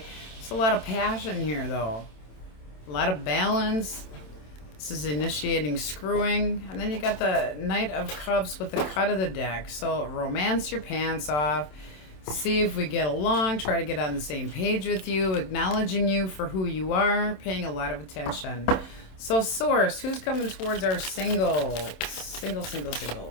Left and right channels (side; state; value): right; late; 27 ms